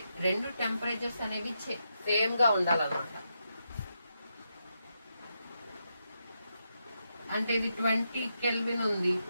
రెండు టెంపరేచర్స్ అనేవి సేమ్ గా ఉండాలన్నమాట. అంటే ఇది 20 కెల్విన్ ఉంది,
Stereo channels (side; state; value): both; inverted; correlation -0.84